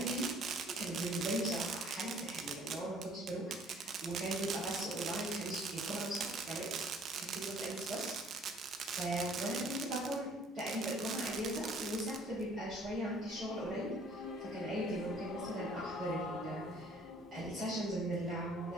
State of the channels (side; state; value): both; normal; correlation 0.57